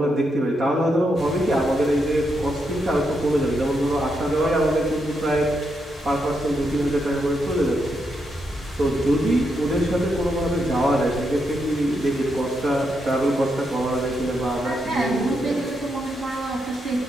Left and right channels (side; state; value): both; normal; correlation 0.82